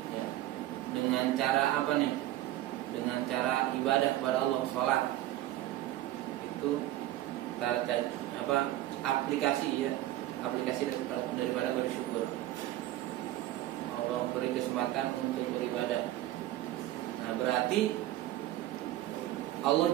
Ya. Dengan cara apa nih? Dengan cara ibadah kepada Allah, sholat. Itu apa? Aplikasi ya, aplikasi daripada bersyukur. Allah beri kesempatan untuk beribadah. Nah, berarti Allah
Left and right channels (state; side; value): quieter; left; 14.8 dB